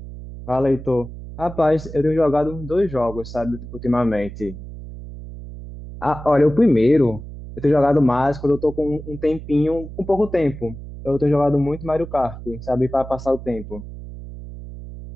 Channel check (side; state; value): right; noise; hum, 12 dB below the sound